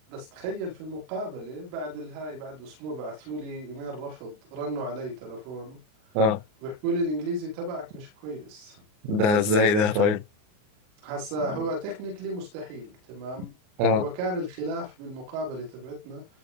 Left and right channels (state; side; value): late; left; 38 ms